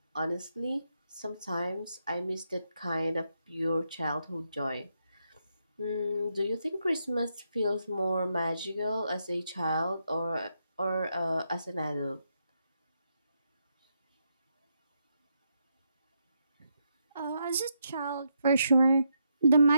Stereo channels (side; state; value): both; inverted; correlation -0.81